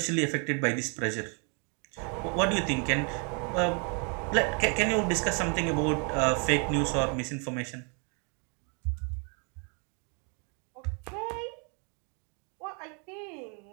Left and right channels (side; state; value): left; quieter; 37.7 dB